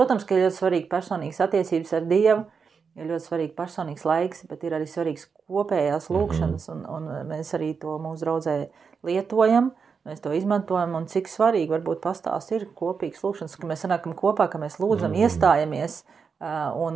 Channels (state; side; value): quieter; left; 5.7 dB